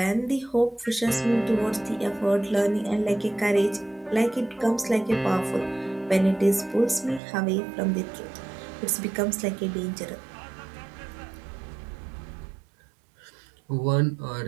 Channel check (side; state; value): left; drops out; at 7.2 s